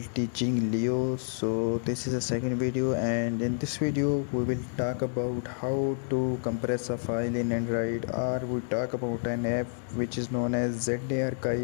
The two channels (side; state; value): right; silent; digital silence